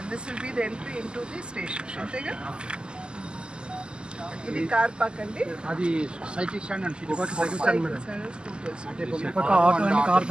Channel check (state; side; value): late; left; 0.048 ms